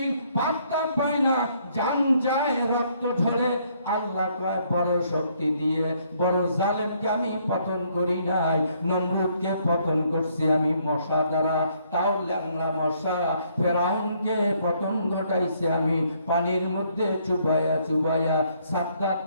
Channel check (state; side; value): inverted; both; correlation -0.68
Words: পাত্তা পায় না, জান যায়, রক্ত ঝরে। আল্লাহ কয় বড় শক্তি দিয়ে বড় জালেমকে আমি পতন করি নাই, নমরুদকে পতন করছি আমি মশা দ্বারা, তাও ল্যাংলা মশা। ফেরাউনকে পতন ঘটাইছি আমি পানির মধ্যে চুবাইয়া।